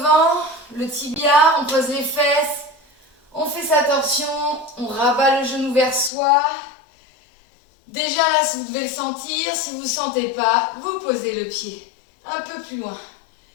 le tibia, on pose les fesses. On fait sa torsion, on rabat le genou vers soi. Déjà là, si vous devez le sentir, si vous ne sentez pas, vous posez le pied un peu plus loin.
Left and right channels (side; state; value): right; drops out; at 6.1 s